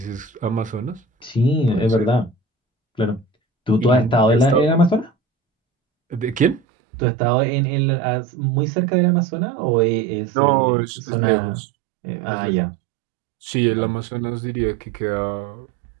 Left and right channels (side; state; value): left; drops out; at 6.6 s